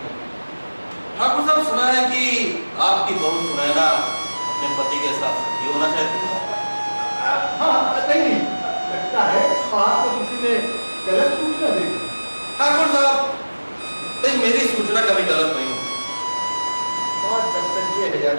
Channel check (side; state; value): both; inverted; correlation -1.00